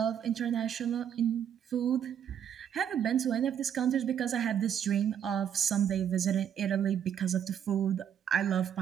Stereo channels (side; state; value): left; quieter; 9.0 dB